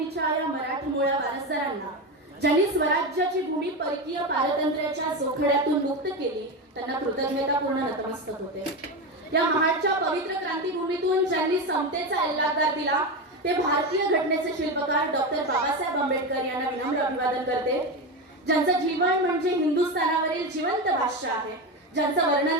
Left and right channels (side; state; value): both; normal; correlation 0.17